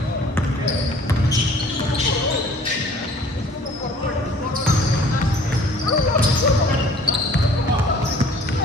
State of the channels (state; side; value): normal; both; correlation 0.52